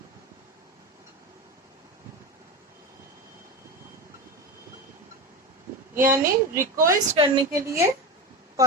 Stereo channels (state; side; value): normal; both; correlation 0.22